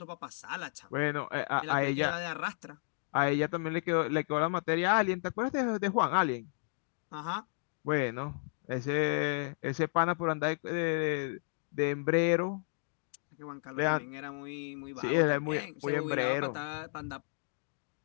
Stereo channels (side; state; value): right; silent; digital silence